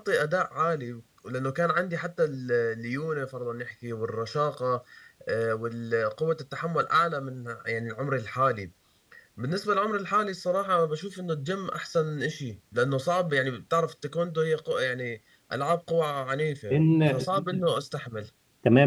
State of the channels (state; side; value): identical; both; correlation 1.00